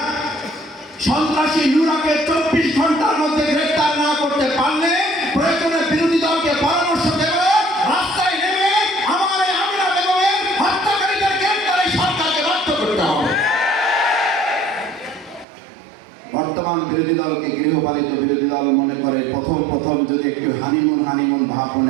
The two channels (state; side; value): drops out; left; at 15.5 s